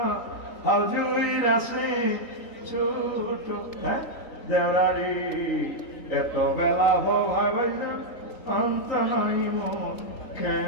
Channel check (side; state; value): right; late; 3.8 ms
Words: হাজুইর আছে ছোট দেওরারি, এত বেলা হয় ভাইজান অন্ত নাই মোর